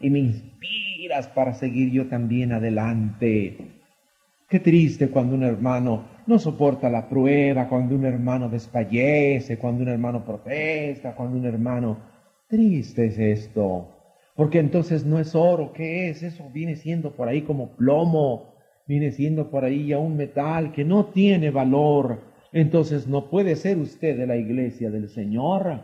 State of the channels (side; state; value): both; identical; correlation 1.00